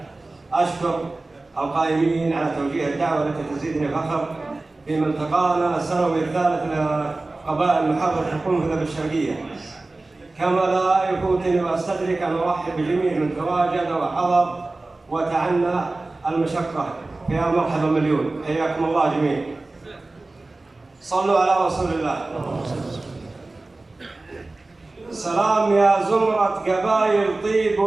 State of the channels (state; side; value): quieter; left; 3.1 dB